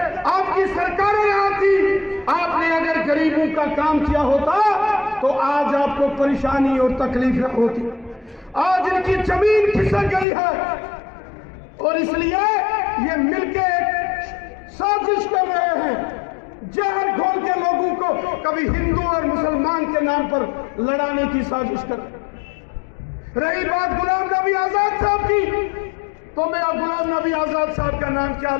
आपकी सरकारें यहाँ थी, आपने अगर गरीबों का काम किया होता तो आज आपको परेशानी और तकलीफ होती। आज इनकी जमीन खिसक गई है और इसलिए ये मिलके साजिश कर रहे हैं, जहर घोल के लोगों को कभी हिंदू और मुसलमान के नाम पर लड़ाने की साजिश कर। रही बात गुलाम नबी आजाद साहब की, तो मैं अब गुलाम नबी आजाद साहब का नाम क्या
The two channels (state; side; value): drops out; right; at 10.2 s